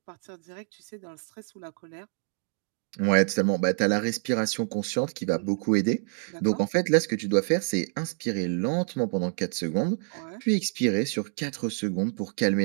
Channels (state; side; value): silent; left; 60 dB below the other